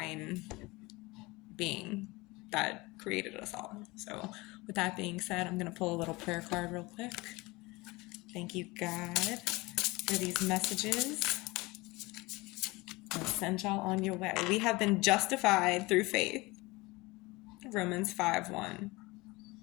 being that created us all. So with that being said, I'm going to pull a little prayer card real quick. Thank you, God, for these messages. I'll send y'all on your way. We have been justified through faith. Romans 5:1.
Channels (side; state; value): right; quieter; 22.8 dB